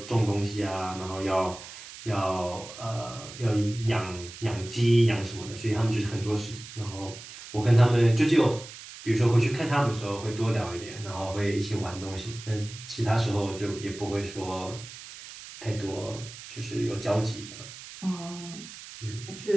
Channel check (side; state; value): right; noise; hiss, 14 dB below the sound